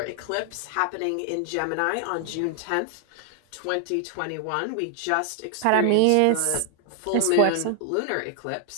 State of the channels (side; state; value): both; different; correlation 0.00